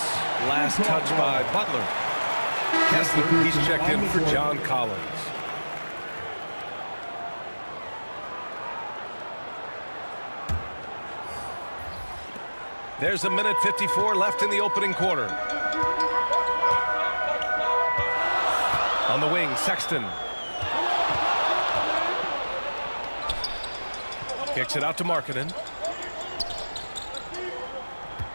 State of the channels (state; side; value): inverted; both; correlation -1.00